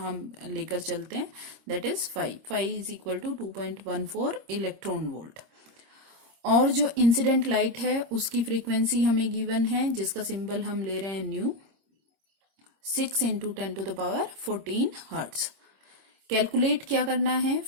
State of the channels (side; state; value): left; late; 26 ms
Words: लेकर चलते हैं that is phi. Phi is equal to 2.14 electron volt. और जो इंसिडेंट लाइट है उसकी फ्रीक्वेंसी हमें गिवन है जिसका सिंबल हम ले रहे हैं new, 6 into 10 to the power 14 hertz. Calculate क्या करना है?